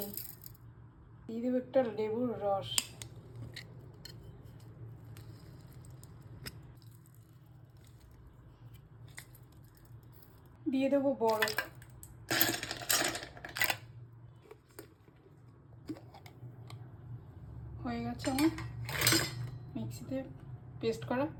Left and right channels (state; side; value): identical; both; correlation 1.00